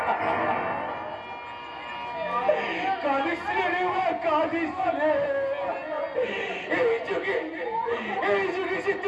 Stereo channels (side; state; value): both; identical; correlation 1.00